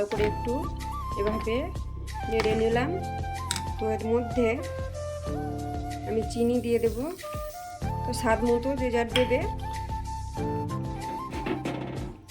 করে একটু এভাবে নেড়ে নিলাম। তো এর মধ্যে আমি চিনি দিয়ে দেব, তো স্বাদ মতো যে যার দেবে।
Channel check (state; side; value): identical; both; correlation 1.00